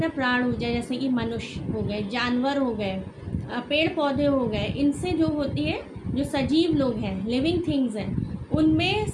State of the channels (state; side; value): identical; both; correlation 1.00